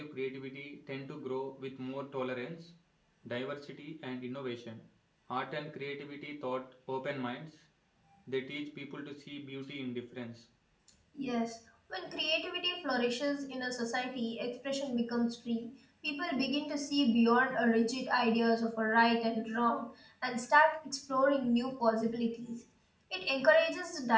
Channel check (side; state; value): both; identical; correlation 1.00